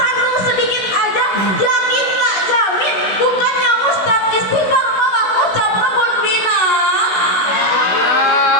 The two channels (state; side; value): late; right; 16 ms